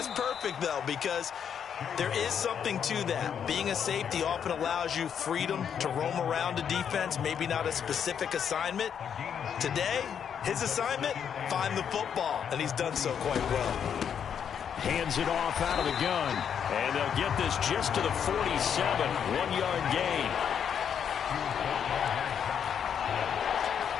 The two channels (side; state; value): right; quieter; 8.0 dB